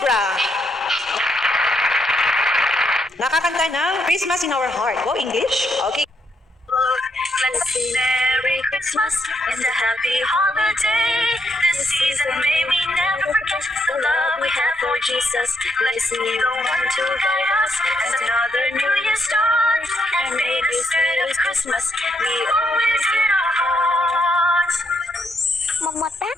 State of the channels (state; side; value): normal; both; correlation 0.77